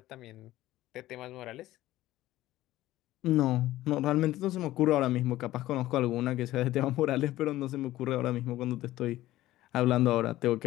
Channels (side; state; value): right; quieter; 15.6 dB